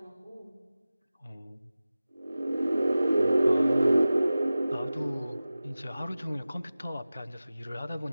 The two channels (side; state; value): both; inverted; correlation -0.96